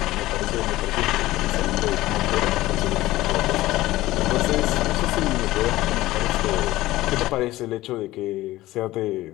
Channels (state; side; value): quieter; right; 17.0 dB